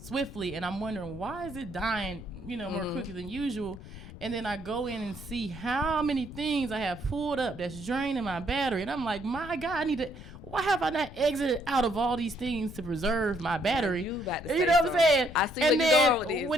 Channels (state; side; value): noise; left; rumble, 14 dB below the sound